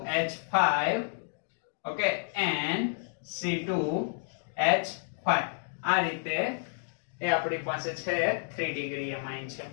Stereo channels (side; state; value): right; silent; digital silence